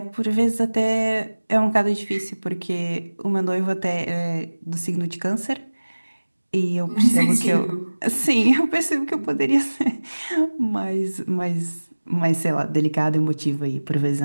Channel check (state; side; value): inverted; both; correlation -1.00